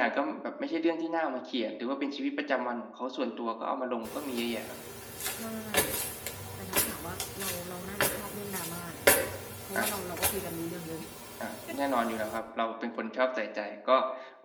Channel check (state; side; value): identical; both; correlation 1.00